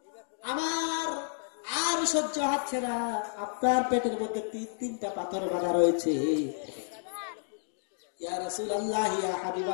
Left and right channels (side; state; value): right; silent; digital silence